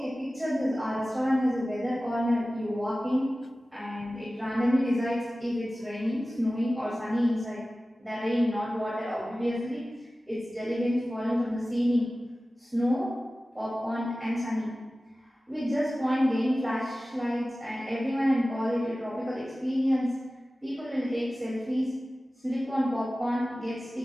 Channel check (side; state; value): both; normal; correlation 0.96